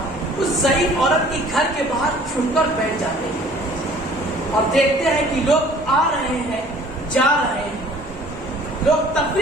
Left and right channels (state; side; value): normal; both; correlation 0.52